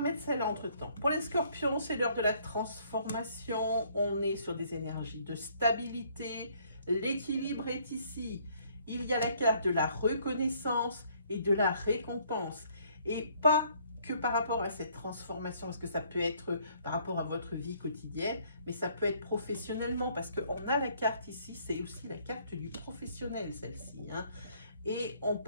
mettre celle-là entre-temps. Pour les scorpions, c'est l'heure de la transformation. On est sur des énergies de stabilité. L'équilibre est ici. Il y a la carte de la reconnaissance et de la récompense. Et pas que par rapport à cette transformation, parce que ça peut être par rapport à votre vie quotidienne, mais ça peut être professionnellement, parce qu'on a la carte ici, c'est aussi la carte du professionnel, celle-ci. Hein. Et on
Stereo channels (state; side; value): inverted; both; correlation -0.63